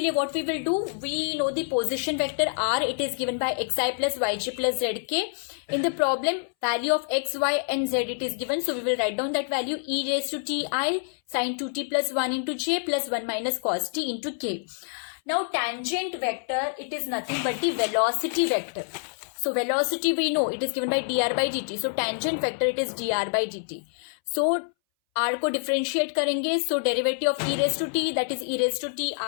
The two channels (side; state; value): right; silent; 60 dB below the other